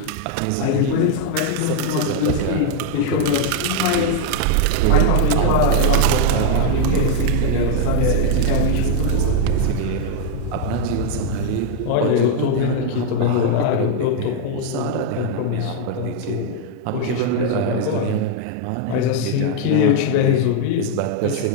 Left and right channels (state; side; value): different; both; correlation 0.00